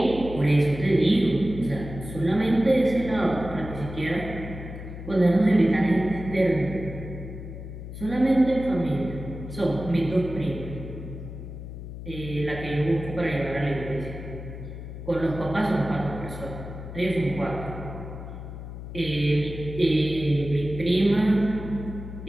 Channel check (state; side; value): noise; left; hum, 10 dB below the sound